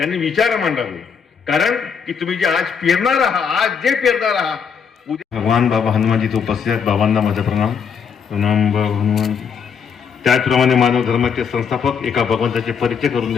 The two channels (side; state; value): right; quieter; 6.6 dB